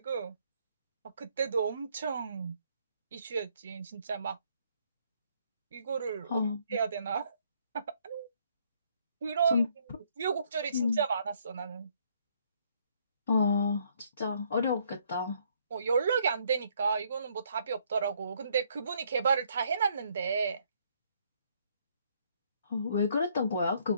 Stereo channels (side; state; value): both; inverted; correlation -0.68